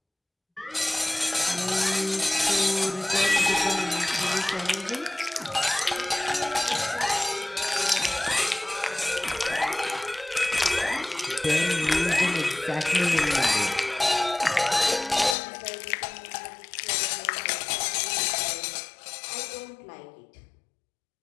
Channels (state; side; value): drops out; right; at 15.4 s